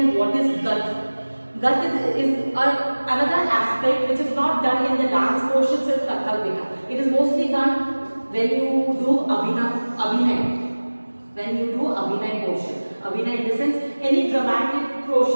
what is GAT? GAT is another aspect which is not done in the dance portions with kathak beta. It is mostly done when you do abhinay. When you do abhinay portion. Abhinay in the sense any dramatic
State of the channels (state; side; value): inverted; both; correlation -1.00